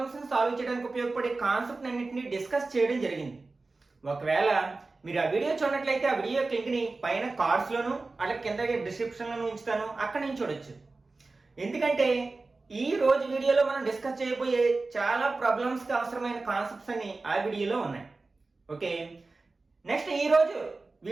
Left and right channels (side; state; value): left; quieter; 3.6 dB